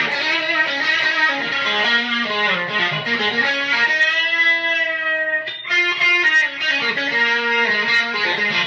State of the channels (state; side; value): identical; both; correlation 1.00